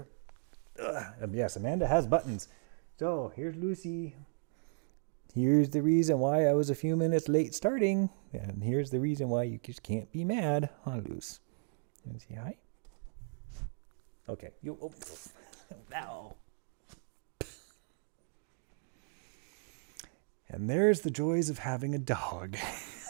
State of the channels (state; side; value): silent; left; 54 dB below the other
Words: Yes, Amanda has buttons. So here's Lucy. Here's the reason why I was a few minutes late starting, and here's the reason why you just can't be mad, huh, Luce? You say hi? Okay. Ow. And there's the joys of having a dog.